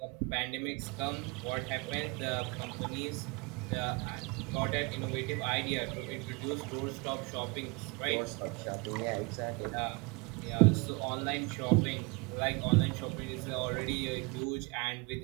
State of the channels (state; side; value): quieter; left; 27.6 dB